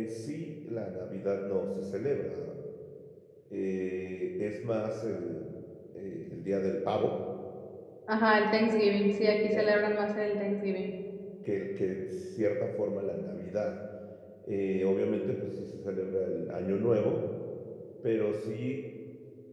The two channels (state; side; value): identical; both; correlation 1.00